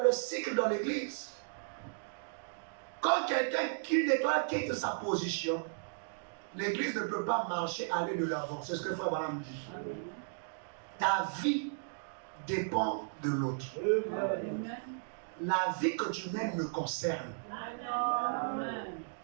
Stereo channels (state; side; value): silent; left; digital silence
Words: le cycle dans l'église, quand quelqu'un qui nettoie quitte sa position, l'église ne peut pas marcher, aller de l'avant. C'est ce que Frère Branham dit. Ta vie dépend de l'autre. la vie que tu mènes me concerne. Amen.